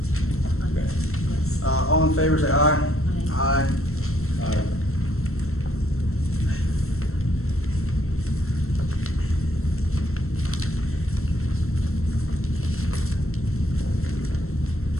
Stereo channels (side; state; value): right; late; 0.63 ms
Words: Okay. yes. All in favor, say aye. Aye. Aye.